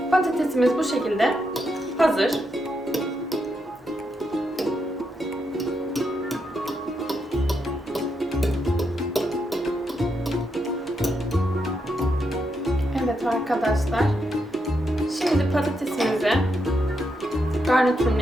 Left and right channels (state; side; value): normal; both; correlation 0.82